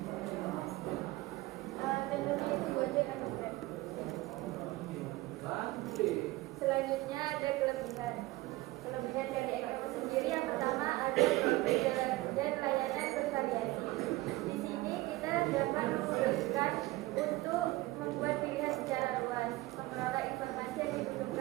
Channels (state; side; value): quieter; left; 19.6 dB